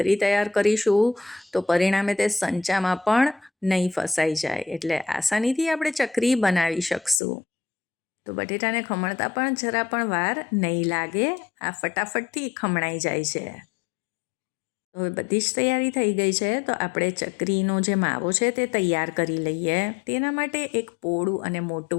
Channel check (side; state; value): right; drops out; at 7.2 s